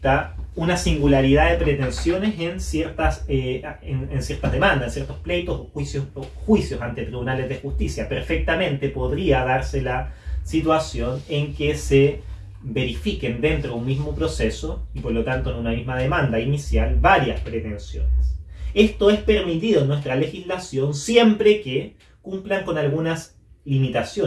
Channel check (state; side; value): identical; both; correlation 1.00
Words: una singularidad de pretensiones en ciertas demandas, en ciertos pleitos o juicios ante tribunales de justicia. Perfectamente podría darse la situación en que se verifiquen dentro de un mismo proceso y por lo tanto en una misma demanda inicial varias pretensiones. Esto es permitido en nuestra legislación siempre que cumplan con algunas